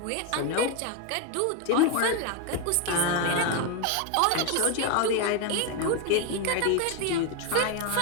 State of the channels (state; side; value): different; both; correlation 0.02